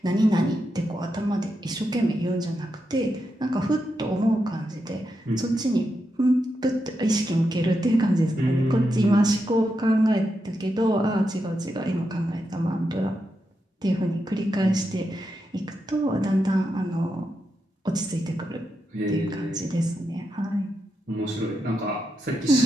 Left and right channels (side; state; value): both; normal; correlation 0.85